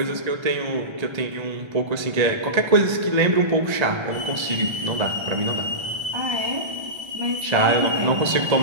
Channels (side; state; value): left; late; 1.3 ms